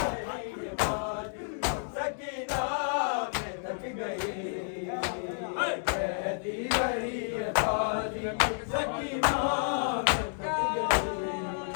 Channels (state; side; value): silent; right; digital silence